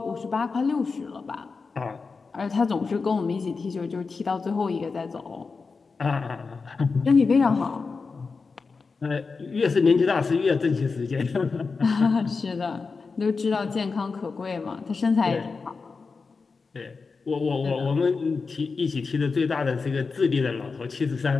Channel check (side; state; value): right; quieter; 4.6 dB